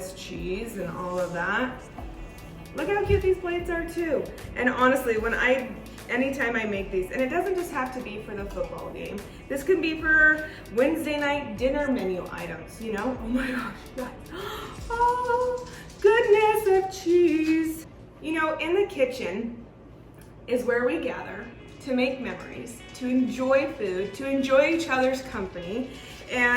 cheese and all of that. Look how cute these plates are too. And honestly, anytime I make these, and it doesn't just have to be for the football game. This can be for Wednesday night dinner menu items, you know? Oh my gosh, guys. Oh, goodness of cheese. You know, in the kitchen is where we gather to make memories, to enjoy food, to enjoy each other's company.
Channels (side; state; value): both; identical; correlation 1.00